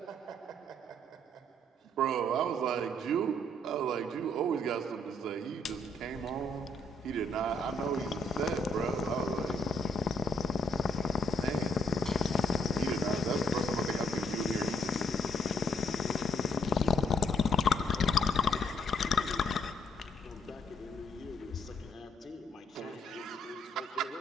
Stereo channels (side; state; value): both; normal; correlation 0.70